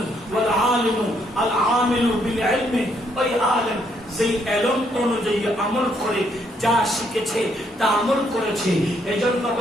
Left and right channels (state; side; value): normal; both; correlation 0.72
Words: আলিমু আল আমিলু বিল ইলমি, ওই আলেম যেই ইলম অনুযায়ী আমল করে, যা শিখেছে তা আমল করেছে। এজন্য